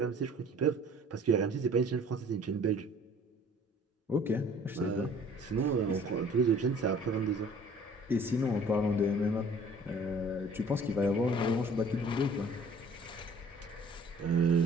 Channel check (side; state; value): both; normal; correlation 0.52